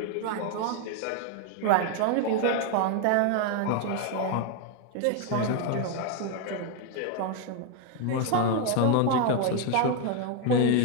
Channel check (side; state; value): both; different; correlation 0.01